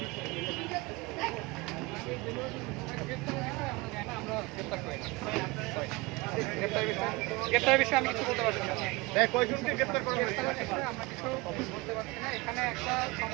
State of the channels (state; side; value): quieter; left; 23.8 dB